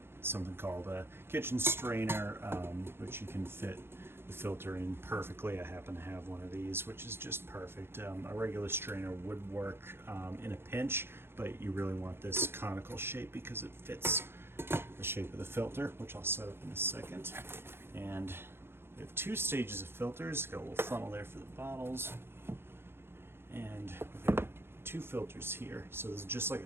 something called a kitchen strainer, which you can fit the filter in perfectly. I happen to have one of these, which is just perfect. A regular strainer would work in a pinch, but you really want this conical shape because it fits the shape of the filter, which I'll set up in a second. And we have two stages of filters. Got a little funnel there for the bottles, and we've got two filters here. So this is just like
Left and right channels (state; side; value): late; left; 0.11 ms